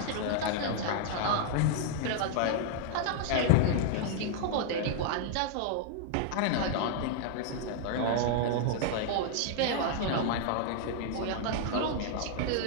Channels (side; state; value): both; different; correlation -0.01